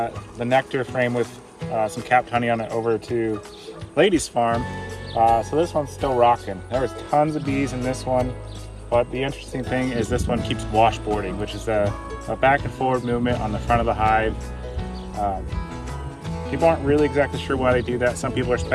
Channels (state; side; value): identical; both; correlation 1.00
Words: nectar frame with some capped honey on it over to Lady's farm. So this one's still rocking. There was tons of bees in this one, but the interesting thing is this one keeps washboarding, which is a back and forward movement on the front of the hive. People aren't really exactly sure why they do that. Some people are